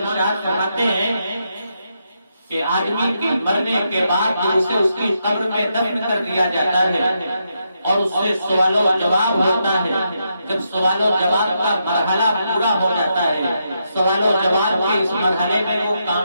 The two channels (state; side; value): inverted; both; correlation -0.82